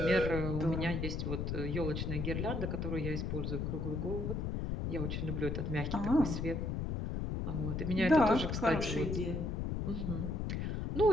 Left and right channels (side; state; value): left; noise; rumble, 2 dB below the sound